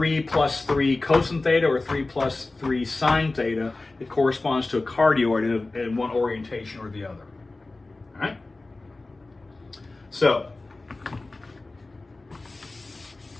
plus 3 cosine theta or 3 plus 3 sine theta, it corresponds to a cardioid in one orientation or the other. All right? So,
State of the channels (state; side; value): quieter; right; 3.2 dB